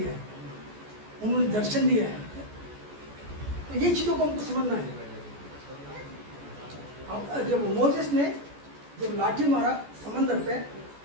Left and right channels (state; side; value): late; left; 14 ms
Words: है, उन्होंने दर्शन दिया है। तो ये चीज़ों को हमको समझना है। अब जब मोसेस ने जब लाठी मारा समंदर पे,